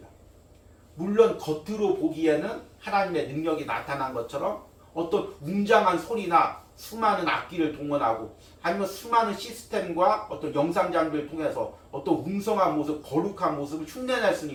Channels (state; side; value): identical; both; correlation 1.00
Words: 물론 겉으로 보기에는 하나님의 능력이 나타난 것처럼 어떤 웅장한 소리나 수많은 악기를 동원하고 아니면 수많은 시스템과 어떤 영상 장비를 통해서 어떤 웅성한 모습, 거룩한 모습을 흉내낼 수는